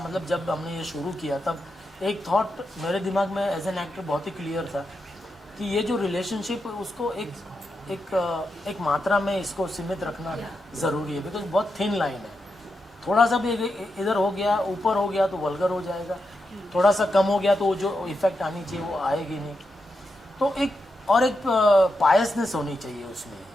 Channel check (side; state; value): both; normal; correlation 0.86